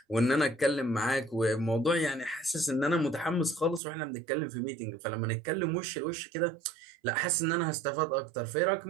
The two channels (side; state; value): left; drops out; at 3.8 s